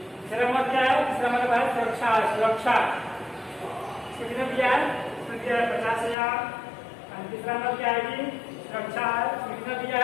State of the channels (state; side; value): drops out; right; at 6.2 s